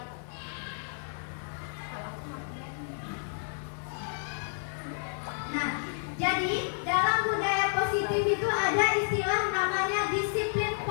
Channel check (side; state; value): right; silent; digital silence